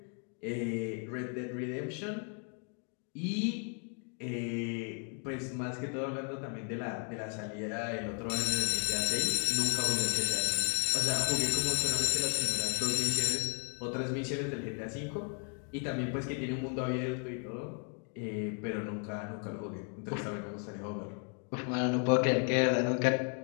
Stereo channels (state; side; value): quieter; right; 39.8 dB